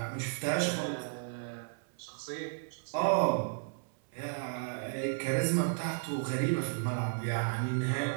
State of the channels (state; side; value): silent; left; 55 dB below the other